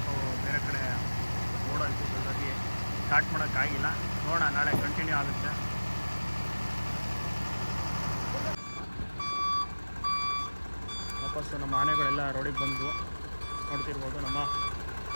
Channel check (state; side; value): inverted; both; correlation -1.00